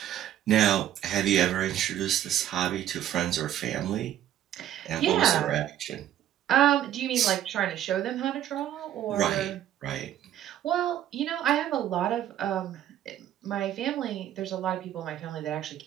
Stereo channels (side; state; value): left; quieter; 11.5 dB